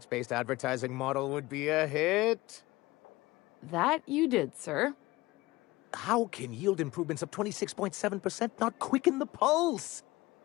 advertising model would be a hit? That you did, sir. How can yield improvements of 26.7% not quicken the pulse?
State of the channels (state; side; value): quieter; right; 19.9 dB